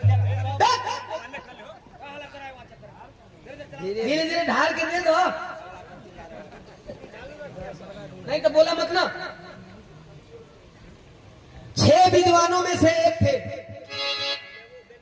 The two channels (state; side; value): identical; both; correlation 1.00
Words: धीरे धीरे ढाल के दे दो, नहीं तो बोला मत ना। 6 विद्वानों में से एक थे